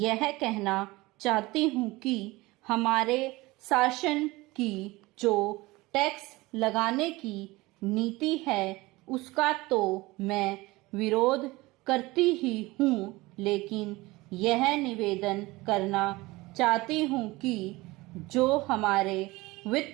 कहना चाहती हूँ कि हमारे शासन की जो टैक्स लगाने की नीति है उसका तो मैं विरोध करती ही हूँ, लेकिन यह निवेदन करना चाहती हूँ कि जो हमारे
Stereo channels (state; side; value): quieter; left; 21.0 dB